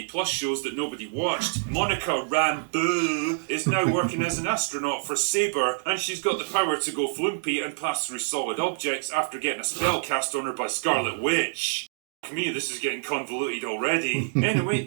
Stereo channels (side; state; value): left; silent; digital silence